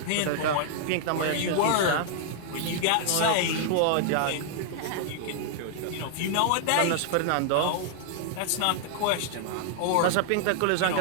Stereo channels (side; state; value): both; different; correlation -0.01